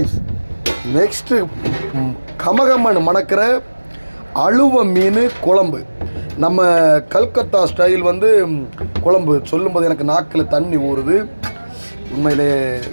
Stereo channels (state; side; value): inverted; both; correlation -1.00